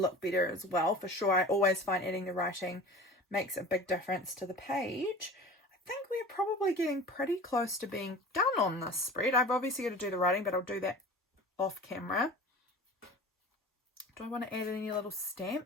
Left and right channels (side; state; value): both; normal; correlation 0.38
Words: better as well, for sure. I always find adding the writing makes a big difference to the page. I think we're probably getting pretty close to being done on this spread. I've obviously got to do the writing, but I'll do that off camera. Do I want to add any little